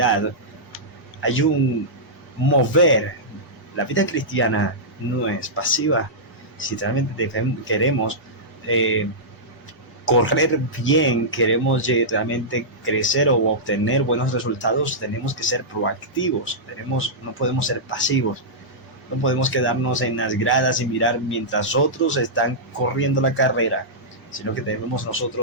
hay un mover. La vida cristiana no es pasiva. Si realmente queremos correr bien, queremos realmente crecer o obtener buenos resultados, tenemos que ser proactivos. No podemos ser pasivos. No podemos quedarnos en las gradas y mirar mientras otros están corriendo la carrera, sino que debemos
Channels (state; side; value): normal; both; correlation -0.12